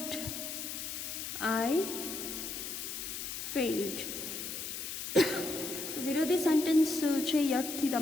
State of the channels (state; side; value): noise; left; hiss, 5 dB below the sound